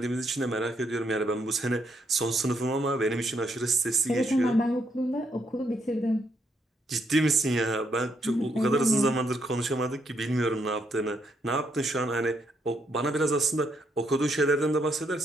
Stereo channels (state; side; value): normal; both; correlation 0.76